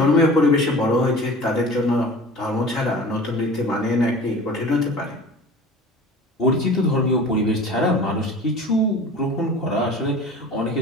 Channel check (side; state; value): both; normal; correlation 0.40